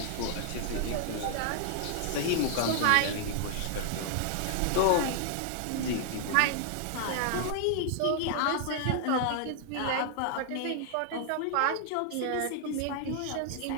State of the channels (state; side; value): different; both; correlation 0.00